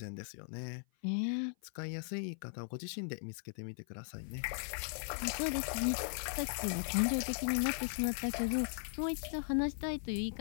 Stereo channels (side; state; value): right; silent; 52 dB below the other